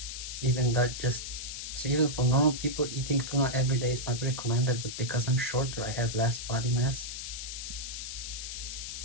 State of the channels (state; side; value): noise; left; hiss, 7 dB below the sound